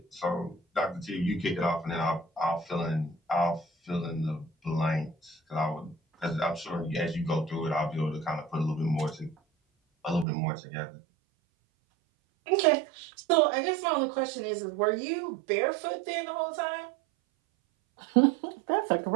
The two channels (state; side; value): drops out; left; at 10.2 s